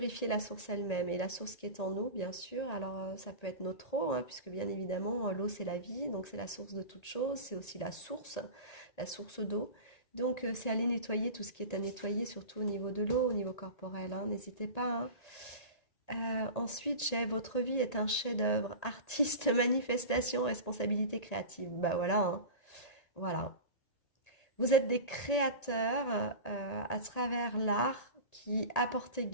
la source elle-même. Et la source qui est en nous, bien sûr, alors ça peut être notre eau, hein, puisque bien évidemment, l'eau c'est la vie, donc c'est la source de toute chose, c'est aussi la source d'eau. Donc c'est aller nettoyer tout ce qui est à nettoyer, surtout au niveau de l'eau, au niveau corporel, hein, n'hésitez pas, hein. Ensuite, j'ai votre vie est un chef-d'œuvre, artiste, manifestation, responsabilité créative. Bah voilà, hein, voilà. Vous êtes des créateurs à travers l'art qui apportait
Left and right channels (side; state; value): right; late; 1.8 ms